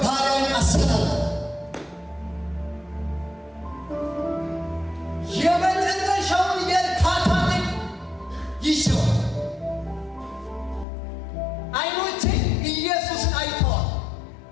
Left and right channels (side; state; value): right; drops out; at 10.9 s